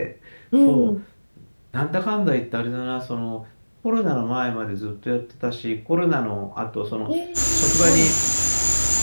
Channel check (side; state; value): both; inverted; correlation -1.00